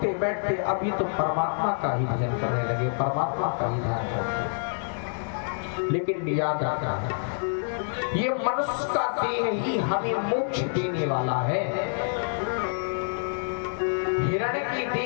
बैठते अब ये तो परमात्मा का ही भजन करने लगे, परमात्मा का ही ध्यान करते। लेकिन याद रखना है, ये मनुष्य का देह ही हमें मोक्ष देने वाला है। हिरण के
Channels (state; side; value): silent; right; 60 dB below the other